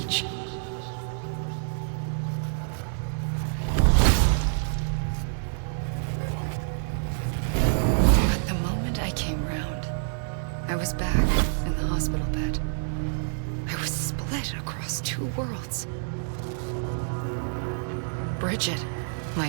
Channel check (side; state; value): left; silent; 60 dB below the other